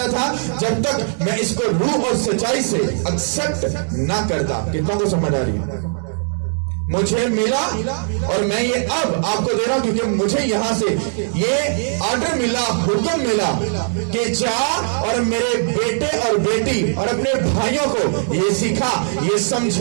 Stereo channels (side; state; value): left; silent; digital silence